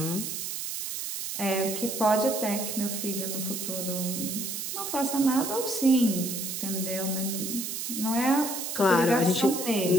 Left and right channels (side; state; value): right; noise; hiss, 4 dB below the sound